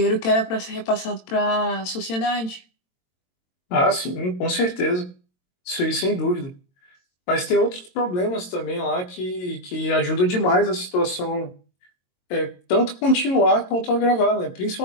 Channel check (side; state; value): right; late; 22 ms